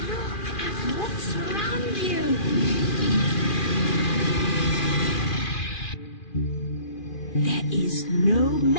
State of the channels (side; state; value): right; late; 2.4 ms